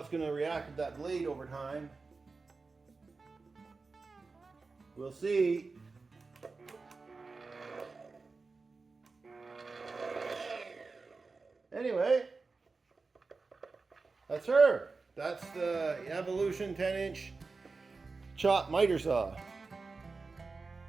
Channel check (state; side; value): quieter; left; 4.1 dB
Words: going to react with that blade over time. We'll see. Anyway, that's her. That's the Evolution 10-inch chop miter saw.